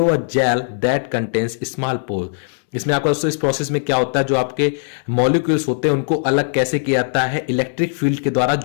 a gel that contains small pore. इसमें आपका दोस्तों इस प्रोसेस में क्या होता है, जो आपके मॉलिक्यूल्स होते हैं उनको अलग कैसे किया जाता है, इलेक्ट्रिक फील्ड के द्वारा,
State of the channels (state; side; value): silent; right; 66 dB below the other